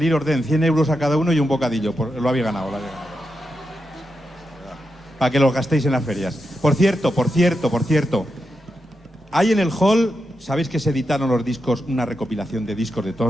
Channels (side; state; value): both; normal; correlation 0.87